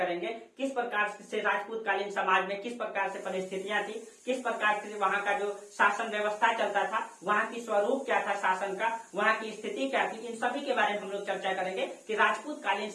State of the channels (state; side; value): identical; both; correlation 1.00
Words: किस प्रकार से राजपूत कालीन समाज में किस प्रकार से परिस्थितियां थी, किस प्रकार से वहां का जो शासन व्यवस्था चलता था, वहां की स्वरूप क्या था शासन का, वहां की स्थिति क्या थी, इन सभी के बारे में हम लोग चर्चा करेंगे कि राजपूत कालीन